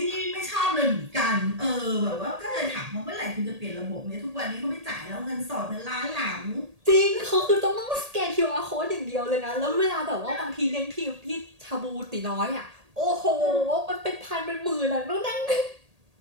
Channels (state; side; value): late; left; 1.8 ms